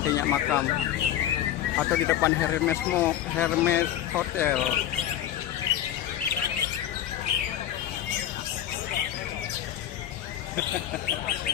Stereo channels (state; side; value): quieter; right; 11.5 dB